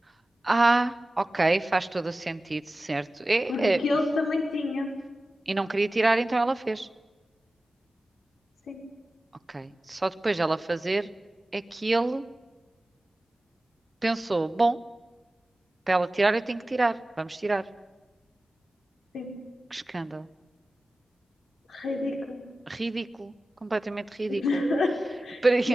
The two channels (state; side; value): normal; both; correlation 0.96